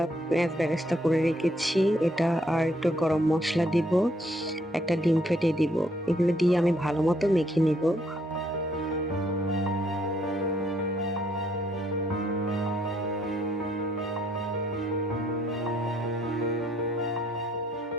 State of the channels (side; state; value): both; normal; correlation 0.69